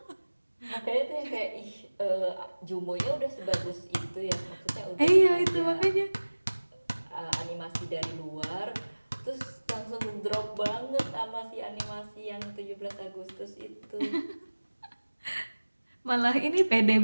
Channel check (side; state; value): both; inverted; correlation -1.00